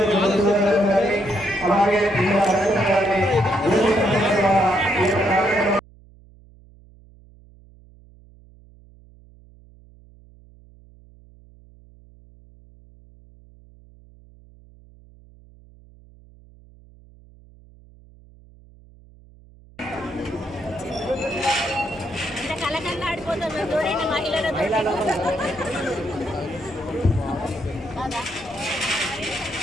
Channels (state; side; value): noise; right; hum, 25 dB below the sound